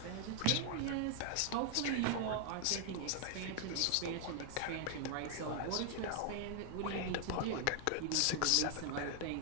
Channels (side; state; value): both; different; correlation 0.00